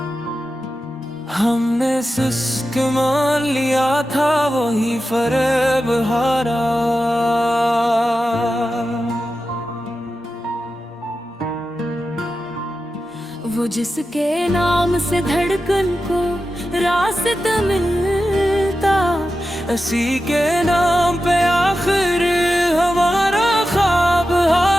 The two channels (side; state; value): both; normal; correlation 0.92